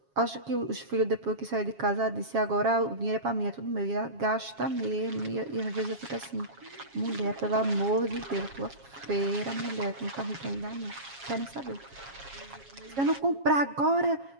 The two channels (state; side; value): late; left; 7.3 ms